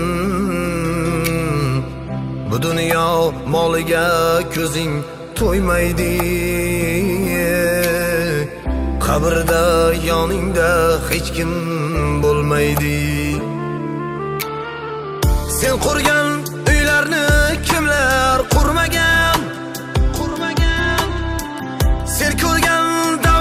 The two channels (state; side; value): identical; both; correlation 1.00